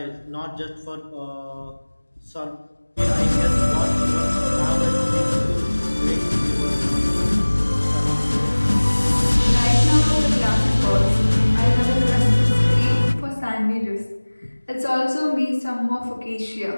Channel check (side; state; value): both; inverted; correlation -1.00